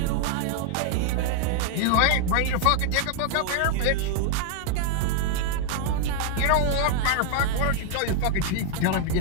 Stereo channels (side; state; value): both; different; correlation 0.00